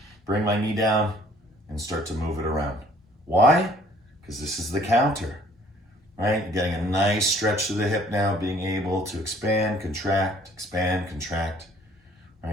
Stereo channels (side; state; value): both; normal; correlation 0.58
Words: bring my knee down, and start to move it around. Why? Because this is the counter, right? Getting a nice stretch to the hip now, being able to expand, contract,